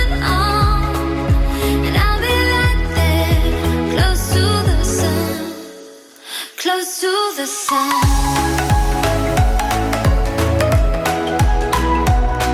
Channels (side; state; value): both; identical; correlation 1.00